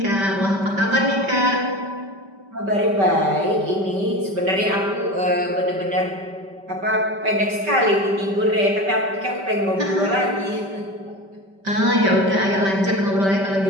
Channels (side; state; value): left; late; 5.2 ms